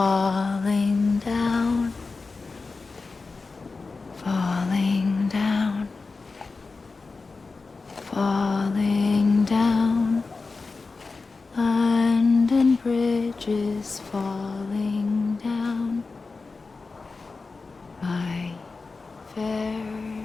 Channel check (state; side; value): quieter; right; 4.1 dB